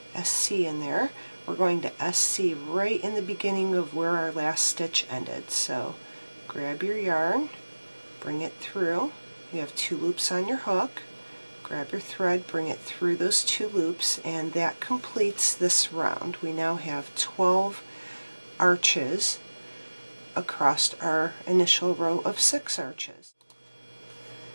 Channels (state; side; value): inverted; both; correlation -1.00